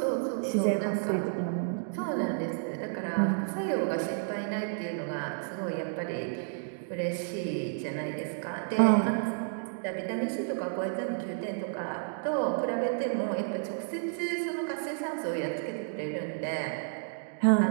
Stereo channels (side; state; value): left; silent; digital silence